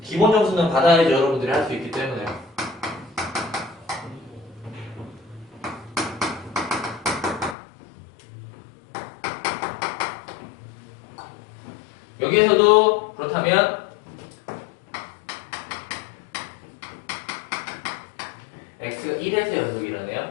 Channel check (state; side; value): drops out; right; at 7.6 s